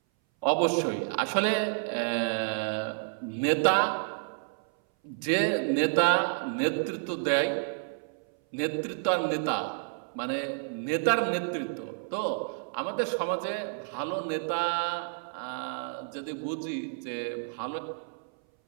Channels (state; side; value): silent; left; 58 dB below the other